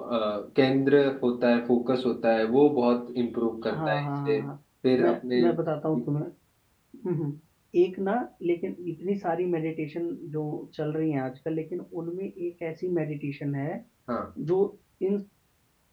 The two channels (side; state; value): both; identical; correlation 1.00